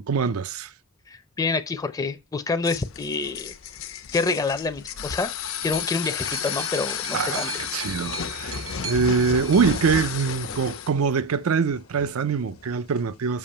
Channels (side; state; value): both; normal; correlation 0.18